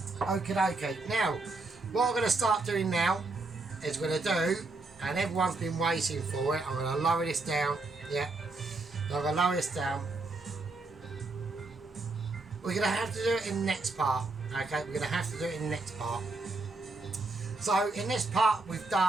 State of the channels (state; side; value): quieter; left; 3.4 dB